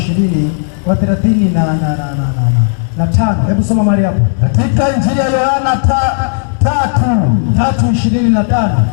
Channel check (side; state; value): right; silent; 65 dB below the other